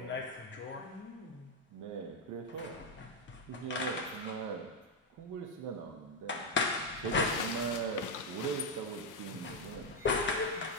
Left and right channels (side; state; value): both; normal; correlation 0.02